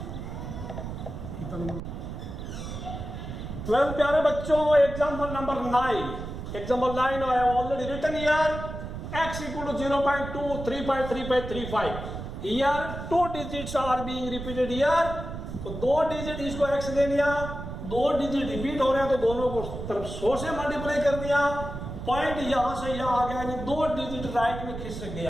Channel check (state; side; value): noise; right; rumble, 8 dB below the sound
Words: 12 प्यारे बच्चों, example number 9, example 9 I have already written here x equal to 0.2 3.3535। Here 2 digits are being repeated here, तो 2 डिजिट इसको x ले लिया, 2 डिजिट रिपीट हो रहे हैं तो दोनों को तरफ 100 से मल्टीप्लाई कर दिया। पॉइंट यहां से यहां आ गया, यानी 2 डिजिट राइट में खिसक